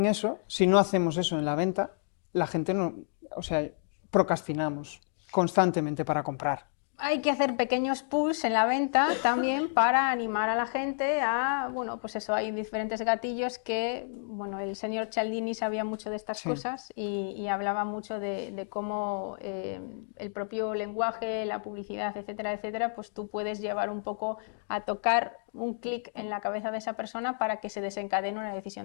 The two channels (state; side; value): silent; right; digital silence